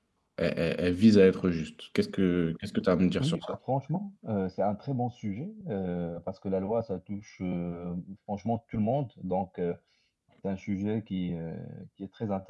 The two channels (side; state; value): both; identical; correlation 1.00